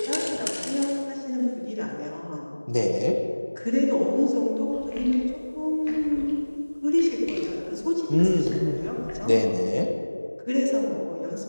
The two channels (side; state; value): both; inverted; correlation -1.00